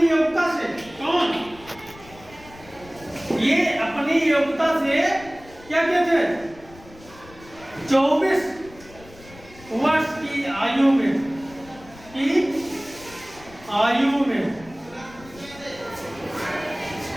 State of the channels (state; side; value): noise; left; rumble, 21 dB below the sound